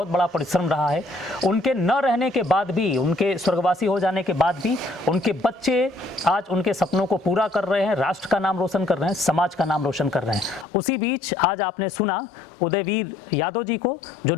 बड़ा परिश्रम रहा है। उनके न रहने के बाद भी, उनके स्वर्गवासी हो जाने के बाद भी उनके बच्चे आज उनके सपनों को पूरा कर रहे हैं, राष्ट्र का नाम रोशन कर रहे हैं, समाज का नाम रोशन कर रहे हैं। उसी बीच आज आपने सुना उदयवीर यादव जी को जो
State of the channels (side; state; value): right; drops out; at 10.7 s